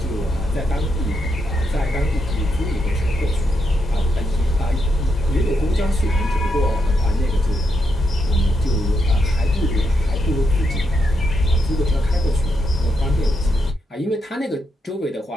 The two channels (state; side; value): normal; both; correlation 0.81